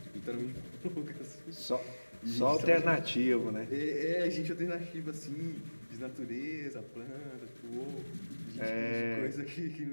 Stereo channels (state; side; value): inverted; both; correlation -1.00